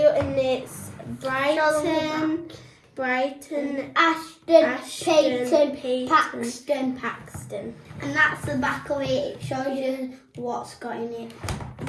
and it's Brighton, Ashton, Payton, Paxton. And that's the back of it. It shows you what's got in it.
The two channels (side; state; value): both; identical; correlation 1.00